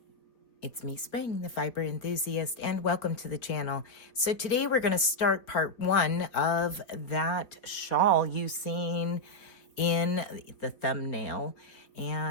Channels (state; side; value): late; right; 3.9 ms